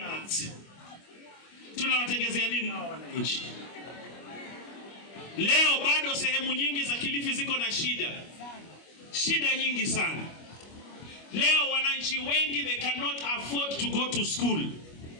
tunawatengezea nini nchi? Leo bado sehemu nyingi za Kilifi ziko na shida nyingi sana. Leo wananchi wengi they cannot afford to go to school.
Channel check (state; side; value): late; right; 25 ms